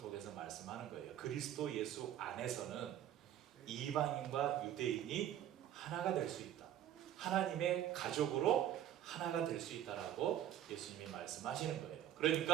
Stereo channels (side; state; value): left; quieter; 11.4 dB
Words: 말씀하는 거예요. 그리스도 예수 안에서는 이방인과 유대인이 하나가 될 수 있다. 하나님의 가족으로 하나가 될 수 있다라고 예수님이 말씀하시는 거예요.